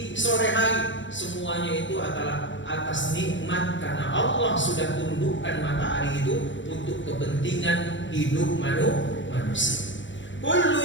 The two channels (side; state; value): right; late; 0.54 ms